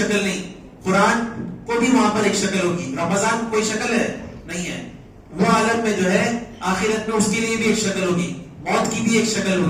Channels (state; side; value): identical; both; correlation 1.00